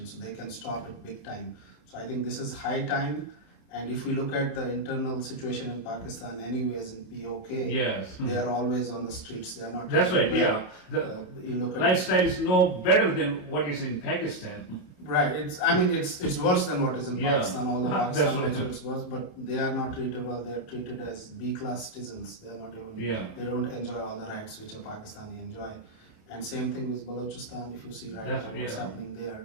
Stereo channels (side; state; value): right; late; 27 ms